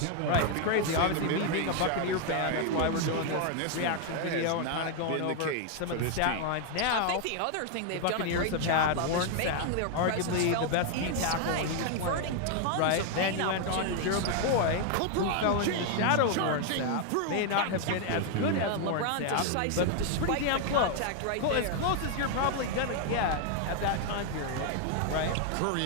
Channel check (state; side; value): different; both; correlation 0.00